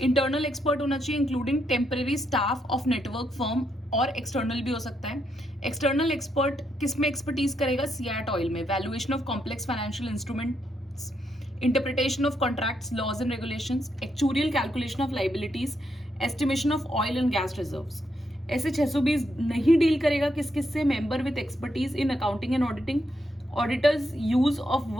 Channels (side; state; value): both; normal; correlation 0.79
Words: इंटरनल एक्सपर्ट होना चाहिए including temporary staff of network firm और एक्सटर्नल भी हो सकता है. एक्सटर्नल एक्सपर्ट किस में एक्सपर्टीज करेगा, सीएट ऑयल में, valuation of complex financial instruments, interpretation of contracts, laws and regulations, actuarial calculation of liabilities, estimation of oil and gas reserves. ऐसे 620 नहीं डील करेगा किस किस से, member with expertise in accounting and auditing, auditors use of